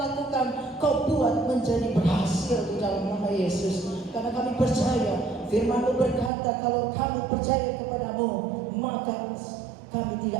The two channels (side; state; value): left; drops out; at 6.3 s